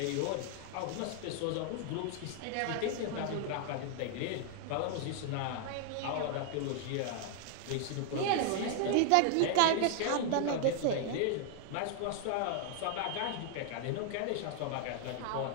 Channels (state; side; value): different; both; correlation 0.00